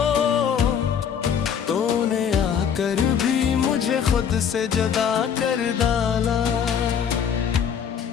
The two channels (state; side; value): quieter; right; 7.8 dB